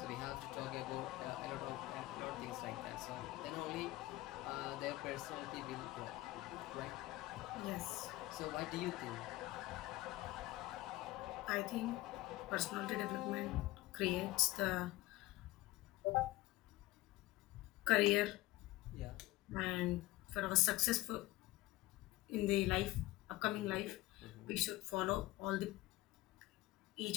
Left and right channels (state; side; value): quieter; right; 18.1 dB